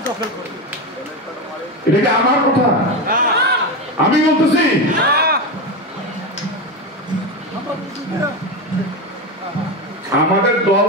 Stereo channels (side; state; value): both; normal; correlation 0.16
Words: এটা কি আমার কথা? আমি বলতেছি আমাদের দল